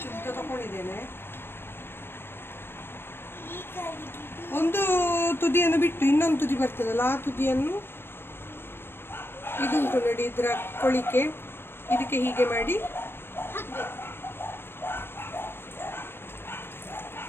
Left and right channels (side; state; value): right; late; 0.11 ms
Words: ಉದ್ದ ತಗೊಂಡಿದ್ದೇನೆ. ಈ ಗಡಿಬಿಡಿ ಒಂದು ತುದಿಯನ್ನು ಬಿಟ್ಟು ಇನ್ನೊಂದು ತುದಿ ಬರ್ತದಲ್ಲ ಆ ತುದಿಯನ್ನು ಇದು ಉಂಟು ನೋಡಿ ಇದರ ಕೊಳಿಕೆ, ಇದಕ್ಕೆ ಹೀಗೆ ಮಾಡಿ ಹಾಕ್ಬೇಕು.